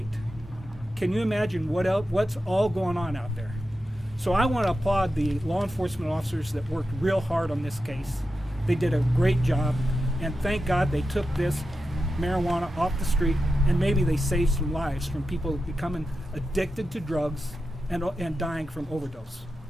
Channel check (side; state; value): both; normal; correlation 0.90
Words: Can you imagine what's all going on out there? So I want to applaud the law enforcement officers that worked real hard on this case. They did a great job, and thank God they took this marijuana off the street, and maybe they save some lives from people becoming addicted to drugs and dying from overdose.